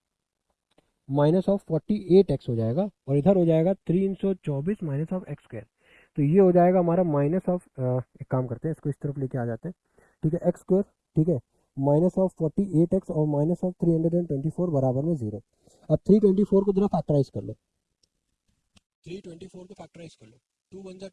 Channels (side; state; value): both; identical; correlation 1.00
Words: 48x हो जाएगा, और इधर हो जाएगा 324 माइनस ऑफ एक्स स्क्वायर, तो ये हो जाएगा हमारा माइनस ऑफ, एक काम करते हैं इसको इस तरफ लेके आ जाते हैं, ठीक है, एक्स स्क्वायर, ठीक है, माइनस ऑफ 48x और माइनस ऑफ 324 बराबर में 0। अब 324 को जरा फैक्टराइज कर लो, 324 को फैक्टराइज कर लो, 2 1 जा